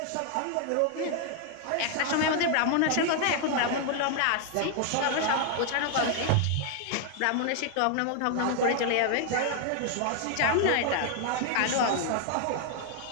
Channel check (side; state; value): both; different; correlation 0.00